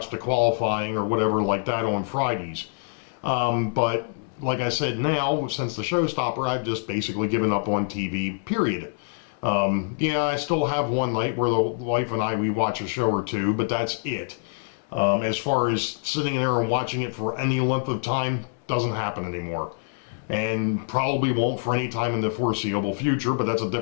the qualifying or whatever like that on Fridays. But like I said, now, since the showstopper, I've just basically given up on TV, period. I still have one night where the wife and we watch a show or two, but that's it. As far as sitting there and watching it for any length of time, doesn't happen anymore. And probably won't for any time in the foreseeable future, but that's a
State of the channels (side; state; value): right; silent; 61 dB below the other